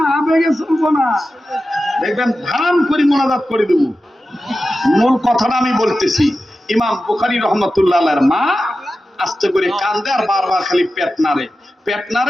আবেগে চলবো না। দেখবেন ধাম করে মোনাজাত করে দেব। মূল কথাটা আমি বলতেছি, ইমাম বুখারী রাহমাতুল্লাহ আলাইহির মা আস্তে করে কান্দে আর বারবার খালি পেট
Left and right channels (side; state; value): both; normal; correlation 0.93